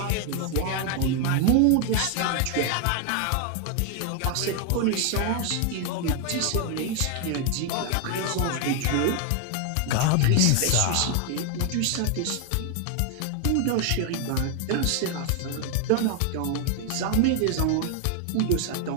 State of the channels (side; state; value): both; different; correlation 0.00